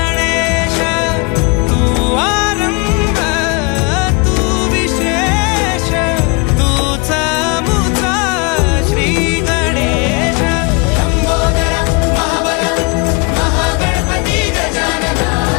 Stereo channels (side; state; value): right; quieter; 30.5 dB